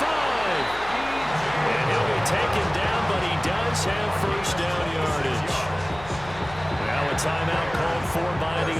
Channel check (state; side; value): noise; left; hum, 16 dB below the sound